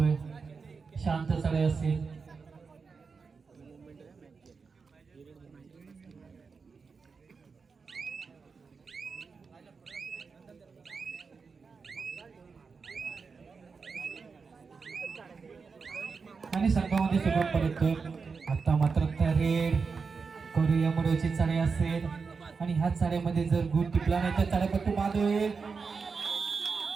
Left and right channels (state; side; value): quieter; left; 5.1 dB